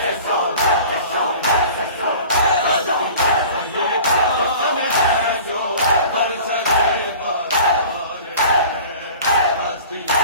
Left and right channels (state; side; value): inverted; both; correlation -0.42